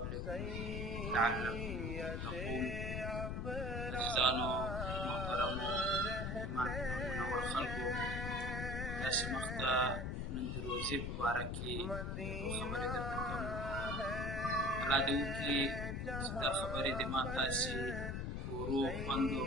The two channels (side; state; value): left; noise; rumble, 2 dB below the sound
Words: لعلكم تتقون. عزیزانو محترمو منور خلکو، تاسې مخته نن د روژې په باره کې یو خبرې درته کوم. الله دې وکړي چې دا خبرې دې ما تاسې کورو خوندو